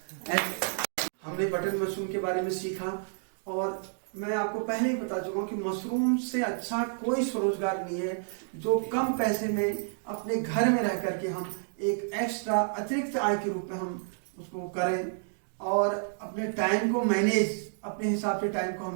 हमने बटन मशरूम के बारे में सीखा और मैं आपको पहले ही बता चुका हूँ कि मशरूम से अच्छा कोई स्वरोजगार नहीं है जो कम पैसे में अपने घर में रह करके हम एक एक्स्ट्रा अतिरिक्त आय के रूप में हम उसको करें और अपने टाइम को मैनेज, अपने हिसाब से टाइम को हम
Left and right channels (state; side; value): silent; left; digital silence